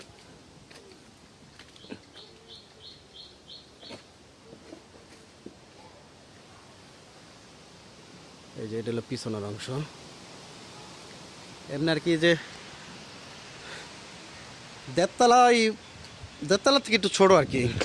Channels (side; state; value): both; identical; correlation 1.00